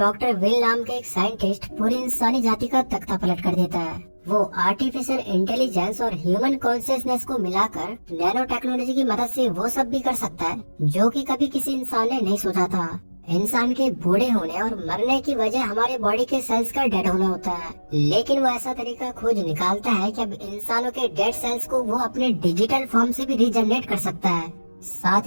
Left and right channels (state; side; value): inverted; both; correlation -1.00